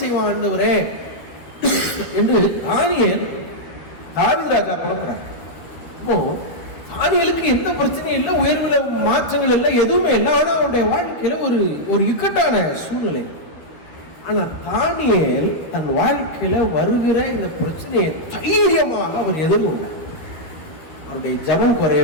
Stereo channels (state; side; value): late; right; 12 ms